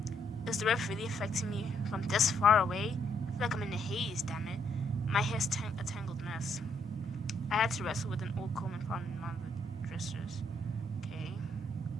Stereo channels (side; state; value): both; normal; correlation 0.73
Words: Is the ref really affecting me from this far away? I feel like I'm in a haze, damn it. My hair's a tangled mess. I had to wrestle with an old comb and found in one of the dressers. Okay.